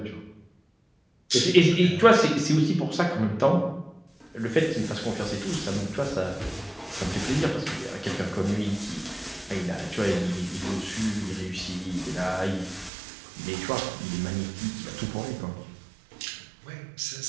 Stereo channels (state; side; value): drops out; left; at 12.9 s